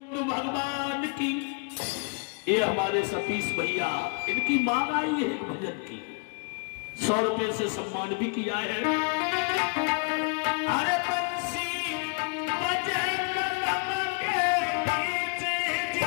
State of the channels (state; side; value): quieter; right; 35.3 dB